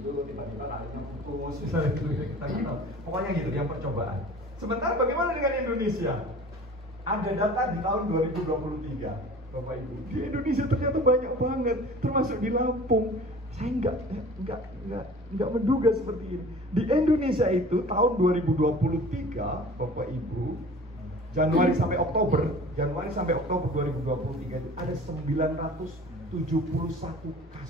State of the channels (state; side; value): normal; both; correlation 0.43